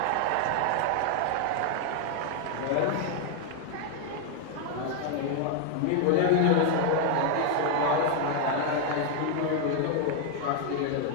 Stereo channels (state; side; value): different; both; correlation 0.00